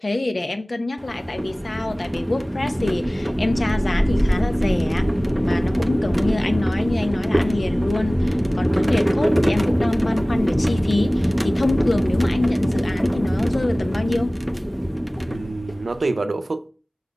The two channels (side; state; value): both; normal; correlation 0.98